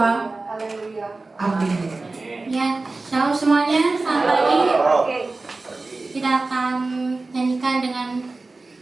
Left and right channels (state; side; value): quieter; left; 3.5 dB